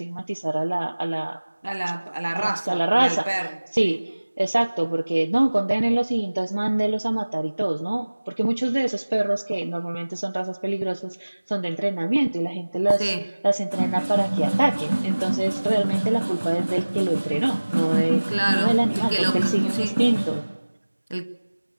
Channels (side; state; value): both; inverted; correlation -1.00